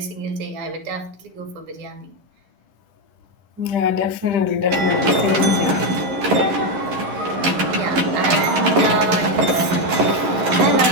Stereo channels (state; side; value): late; left; 11 ms